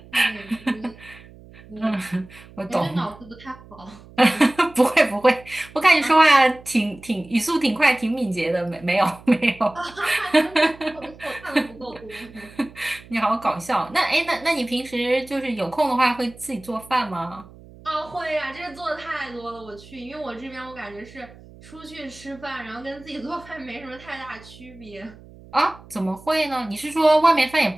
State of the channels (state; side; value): noise; right; hum, 21 dB below the sound